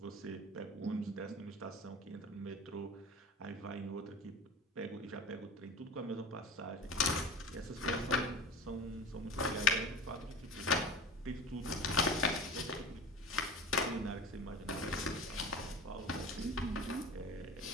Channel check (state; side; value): normal; both; correlation 0.34